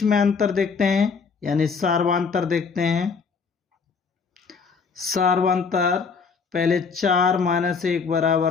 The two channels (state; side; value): quieter; right; 5.4 dB